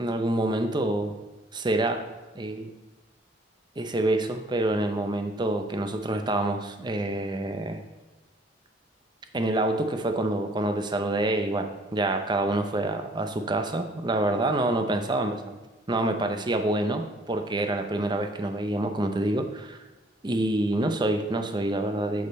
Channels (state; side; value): normal; both; correlation 0.59